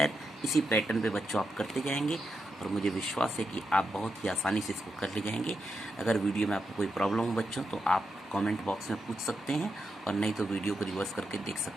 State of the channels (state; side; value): normal; both; correlation 0.85